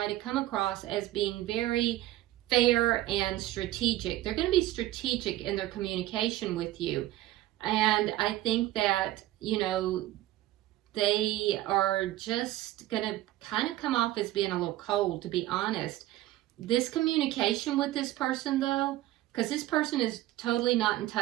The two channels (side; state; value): left; quieter; 15.7 dB